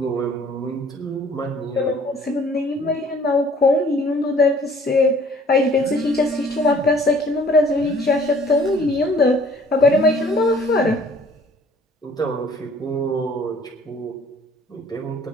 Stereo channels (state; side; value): normal; both; correlation 0.55